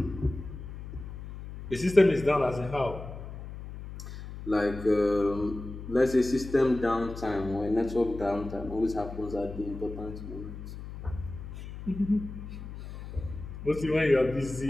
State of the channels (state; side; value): noise; left; hum, 11 dB below the sound